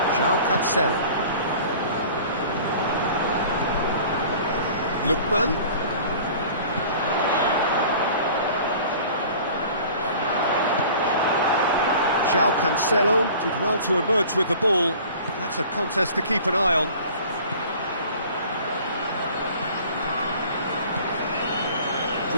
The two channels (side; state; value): both; inverted; correlation -0.45